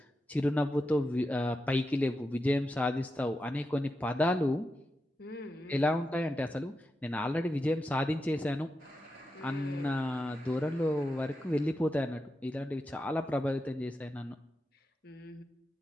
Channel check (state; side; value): normal; both; correlation 0.88